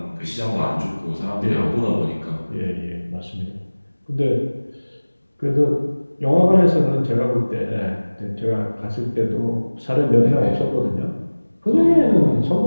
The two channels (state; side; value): inverted; both; correlation -1.00